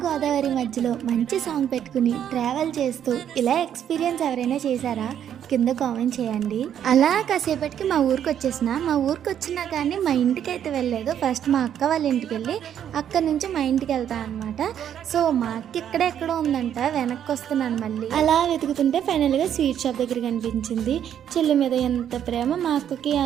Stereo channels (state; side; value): quieter; left; 9.6 dB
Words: గోదావరి మధ్యలో మంచి సాంగ్ పెట్టుకుని ట్రావెల్ చేస్తూ ఇలా ఎక్స్పీరియన్స్ ఎవరైనా చేశారా? కింద కామెంట్ చేయండి. అలా కాసేపటికి మా ఊరికి వచ్చేసిన. మా ఊరికి వచ్చినా కానీ మా ఇంటికి అయితే వెళ్ళలేదు. ఫస్ట్ మా అక్క వాళ్ళ ఇంటికి వెళ్ళి అక్కడి నుంచి మా ఇంటికి వెళ్తా అనమాట. సో మా అక్క ఎక్కడో ఉందంట, వెనక్కి వస్తున్నాను మళ్ళీ. అలా వెతుకుతుంటే ఫైనల్గా స్వీట్ షాప్ దగ్గర కనిపించింది. చెల్లి మీద ఎంత ప్రేమ మా అక్కకి